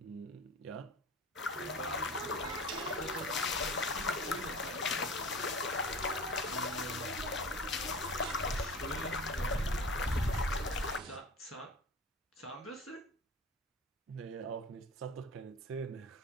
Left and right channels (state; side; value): normal; both; correlation 0.36